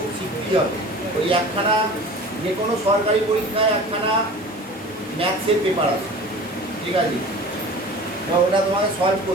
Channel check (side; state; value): both; normal; correlation 0.40